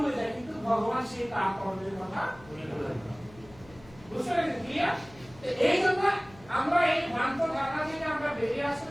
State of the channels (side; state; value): left; noise; hum, 23 dB below the sound